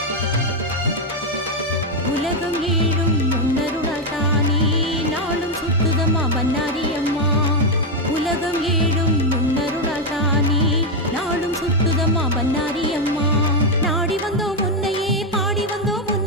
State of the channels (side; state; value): both; normal; correlation 0.03